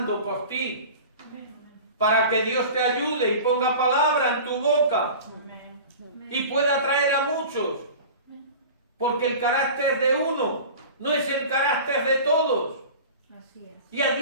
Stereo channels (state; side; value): inverted; both; correlation -0.37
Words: por ti, para que Dios te ayude y ponga palabra en tu boca Amén. y pueda atraer a muchos. Porque el carácter de uno no es el carácter de todos. Así es. Y a